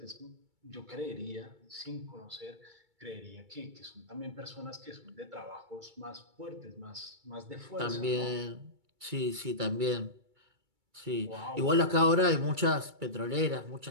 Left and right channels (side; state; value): left; late; 2.3 ms